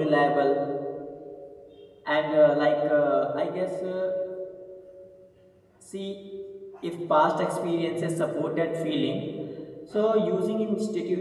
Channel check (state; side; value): identical; both; correlation 1.00